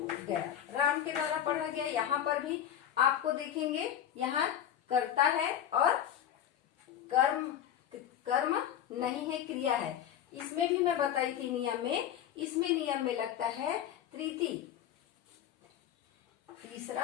गया, राम के द्वारा पढ़ा गया। यहाँ पर भी आपको देखेंगे यहाँ कर्ता है और कर्म नहीं है, क्रिया है। इसमें भी मैं बताई थी नियम में, इसमें नियम में लगता है तृतीय,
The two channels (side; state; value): right; quieter; 10.3 dB